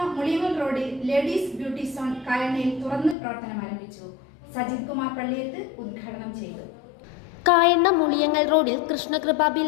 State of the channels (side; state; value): right; drops out; at 3.2 s